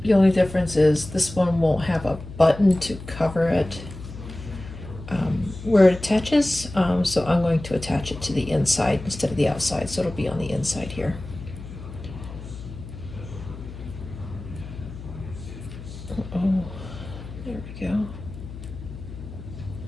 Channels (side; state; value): left; noise; hum, 12 dB below the sound